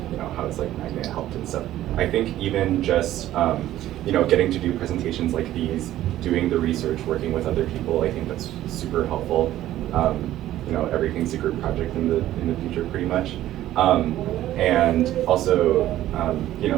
how it's Magnet helped and stuff. I think even just getting to do presentations like these, doing the research, working with other people, I think that's super helpful. Everything's a group project in the future pretty much. And also,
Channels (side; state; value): left; quieter; 13.7 dB